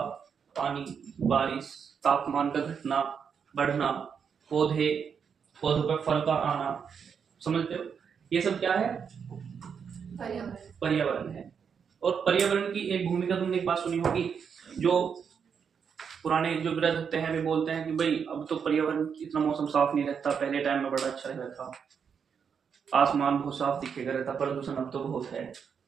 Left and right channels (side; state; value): left; quieter; 6.8 dB